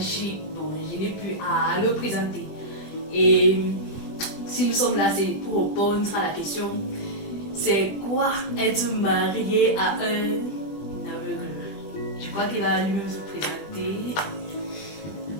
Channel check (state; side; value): late; right; 20 ms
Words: bon, je n'ai plus à le présenter. Et si nous sommes là, c'est pour répondre à la question, c'est quoi être marié à un aveugle? Je crois qu'il va lui-même se présenter.